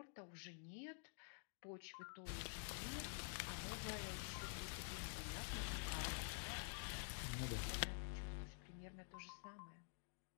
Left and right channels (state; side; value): silent; right; digital silence